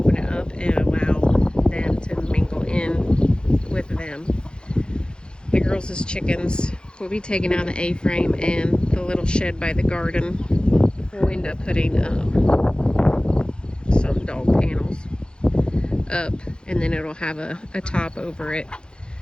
it up and allow them to mingle in with them. The girls' chickens will be taking out the A-frame, and the little shed by the garden we'll end up putting some dog panels up, and then it'll have a top over it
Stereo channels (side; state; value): right; late; 0.050 ms